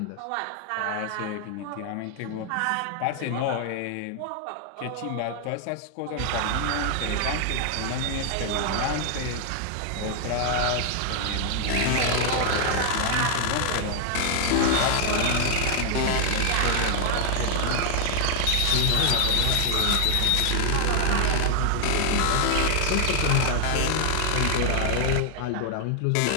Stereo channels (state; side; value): different; both; correlation 0.00